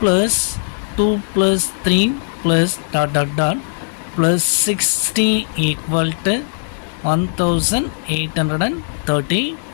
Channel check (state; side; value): silent; right; digital silence